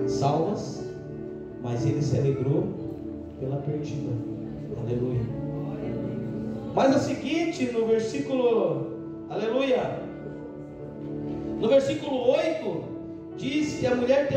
salvas, mas ele se alegrou pela perdida. Aleluia. Mas é o seguinte, no versículo, aleluia, no versículo 8, diz que a mulher,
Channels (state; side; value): identical; both; correlation 1.00